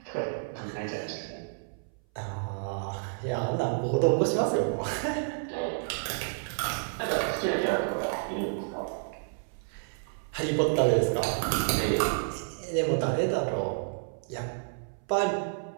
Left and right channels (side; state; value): left; silent; 58 dB below the other